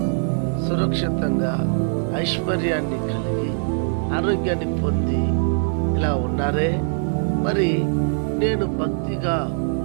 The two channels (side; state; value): left; silent; 63 dB below the other